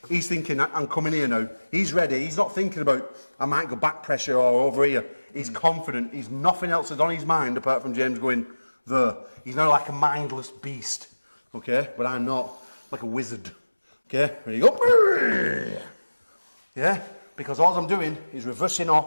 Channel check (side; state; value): both; inverted; correlation -1.00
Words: He's thinking, I'm coming here now. He's ready. He's not thinking about, I might go back pressure or over here. He's confident. He's nothing else is on his mind apart from James going there. He's now like a mindless beast. Okay? But I'm not. Like a wizard. Okay? Ready, go. Yeah? Because all I'm doing is reversing